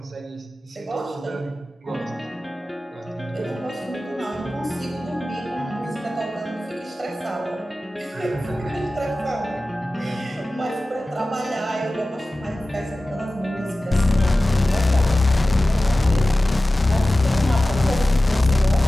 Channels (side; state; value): both; normal; correlation 0.96